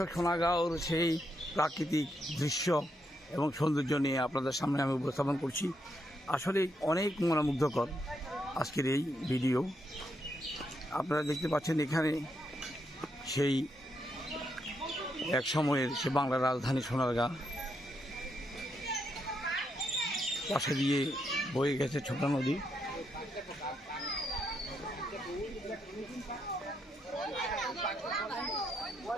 সোনারগাঁওর সেই প্রাকৃতিক দৃশ্য এবং সৌন্দর্য নিয়ে আপনাদের সামনে আমি উপস্থাপন করছি। আসলে অনেক মনোমুগ্ধকর আজকের এই ভিডিও। আপনারা দেখতে পাচ্ছেন এখানে সেই এক সময়ের সে বাংলার রাজধানী সোনারগাঁ, পাশে দিয়ে বয়ে গেছে ছোটা নদী।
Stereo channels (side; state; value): both; normal; correlation 0.79